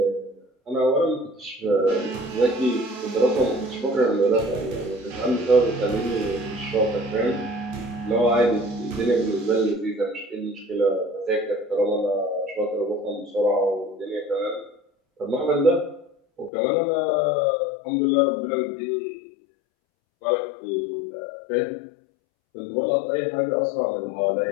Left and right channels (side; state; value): right; drops out; at 16.5 s